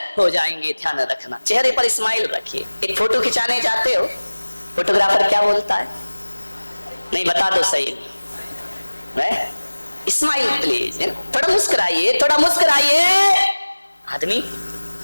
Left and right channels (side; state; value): both; inverted; correlation -1.00